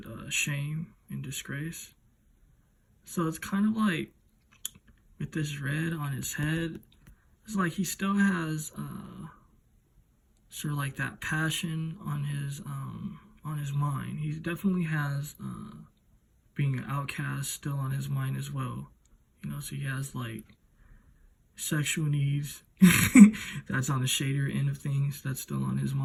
shame and disgrace. So it's kind of like, with this red on his head, it's like he still has sort of like that passion on his mind. He definitely has being an outcast still on his mind as well. So he has like sexual needs that's on the shadier end of things, that's still on his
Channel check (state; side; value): identical; both; correlation 1.00